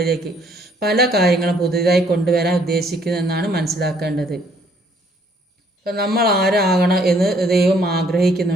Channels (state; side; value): normal; both; correlation 0.64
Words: പല കാര്യങ്ങളും പുതിയതായി കൊണ്ടുവരാൻ ഉദ്ദേശിക്കുന്നതെന്നാണ് മനസ്സിലാക്കേണ്ടത്. അപ്പം നമ്മൾ ആരാകണം എന്ന് ദൈവം